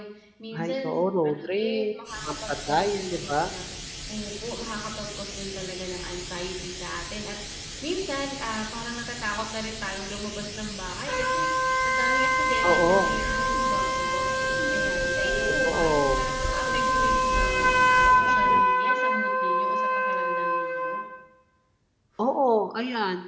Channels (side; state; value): both; identical; correlation 1.00